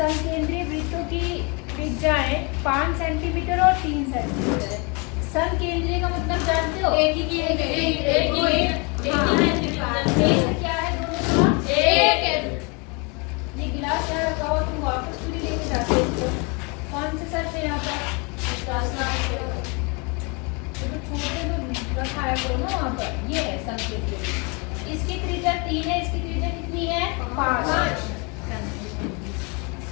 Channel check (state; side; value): quieter; right; 31.5 dB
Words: वृत्तों की त्रिज्याएं 5 सेंटीमीटर और 3 सेंटीमीटर है। समकेंद्रीय का मतलब जानते हो? एक ही क्या है दोनों का? एक है। ये गिलास यहाँ रखा हुआ, तुम वापस पूरी लेके जाते हो इसको। कौन से सर पे यहाँ पर? तो छोटे तो रखाया करो ना वहाँ पर। ये है संकेत। इसकी त्रिज्या 3 है, इसकी त्रिज्या कितनी है? 5।